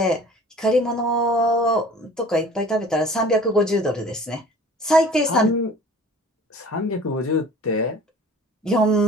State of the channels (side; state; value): both; normal; correlation 0.46